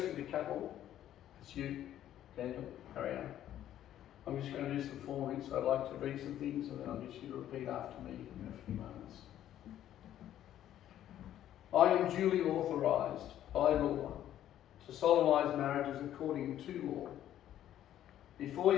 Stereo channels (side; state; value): right; quieter; 11.7 dB